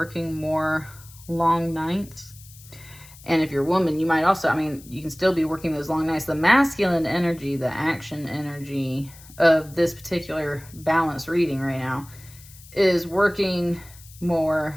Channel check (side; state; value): left; noise; hiss, 21 dB below the sound